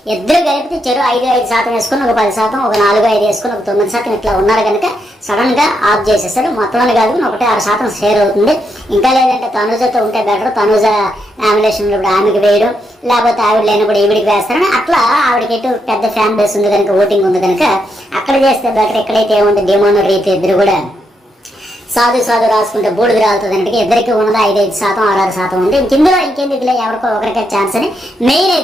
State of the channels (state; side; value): normal; both; correlation 0.80